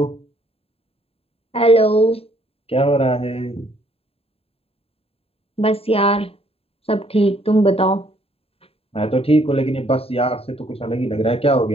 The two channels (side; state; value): right; late; 0.28 ms